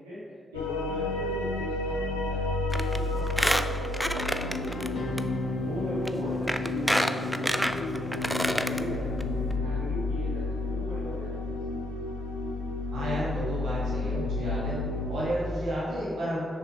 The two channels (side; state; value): both; normal; correlation 0.70